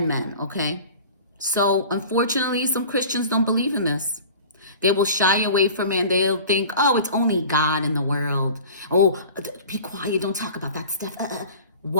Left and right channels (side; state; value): both; inverted; correlation -0.40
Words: men, okay? So, unfortunately, some Christians don't believe in this. They will shy away from it and they'll think, oh, it's only God in the world. Oh, be quiet, don't talk about that stuff.